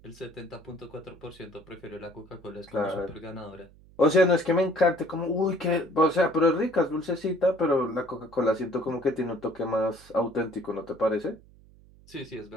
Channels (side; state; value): right; noise; hum, 25 dB below the sound